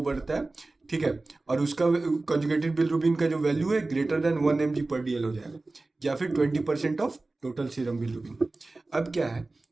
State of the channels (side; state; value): left; quieter; 3.2 dB